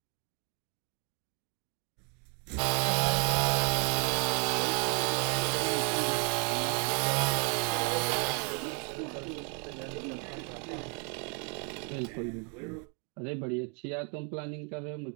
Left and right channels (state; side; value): quieter; left; 37.8 dB